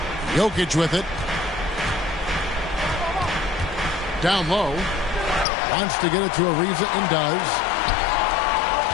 Jokic with it. Down low. Wants to get it to Ariza and does.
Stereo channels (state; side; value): drops out; right; at 5.5 s